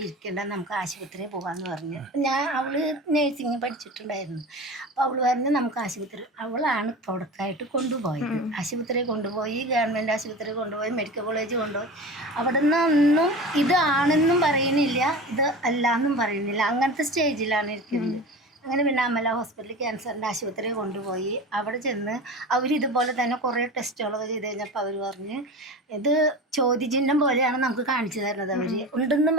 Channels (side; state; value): both; normal; correlation 0.31